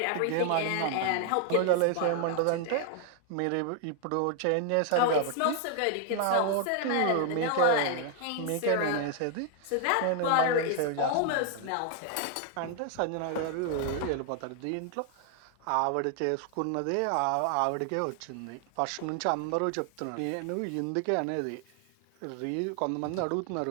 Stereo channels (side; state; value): both; different; correlation 0.00